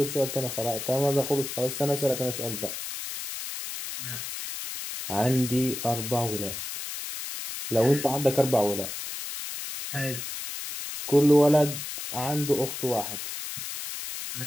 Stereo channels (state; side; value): noise; left; hiss, 7 dB below the sound